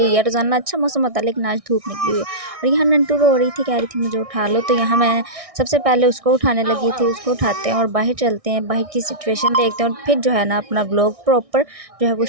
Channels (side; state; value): left; late; 1.6 ms